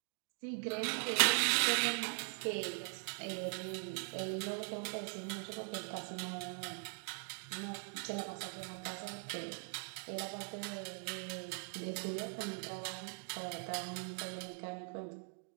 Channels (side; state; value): left; silent; 50 dB below the other